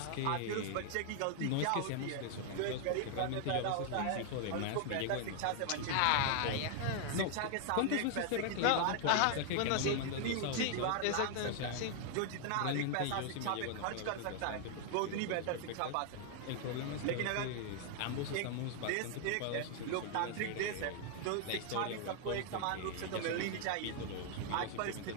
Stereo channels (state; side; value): different; both; correlation 0.00